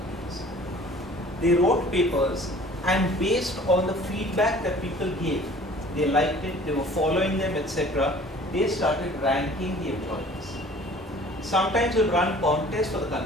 They wrote papers, and based on the feedback that people gave, they liked it, they were following them, etc. They started ranking the employees. Sometimes we'll run contests for the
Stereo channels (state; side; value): normal; both; correlation 0.49